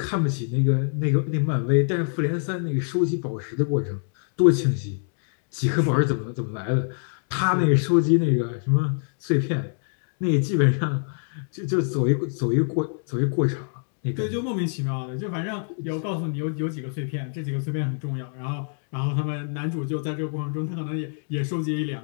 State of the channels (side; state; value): right; silent; 61 dB below the other